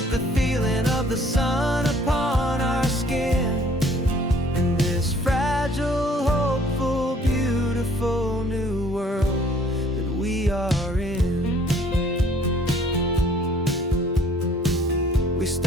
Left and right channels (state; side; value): normal; both; correlation 0.58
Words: the feeling of the sun upon our skin, in this fragile, hopeful, beautiful new world that we are in. We